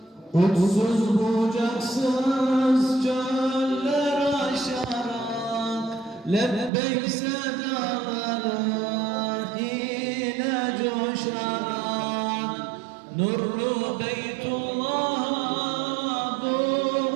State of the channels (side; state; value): left; drops out; at 6.7 s